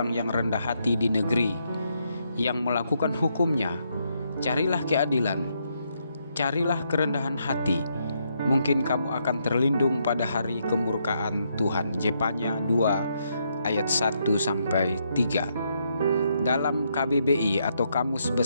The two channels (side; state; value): both; inverted; correlation -0.77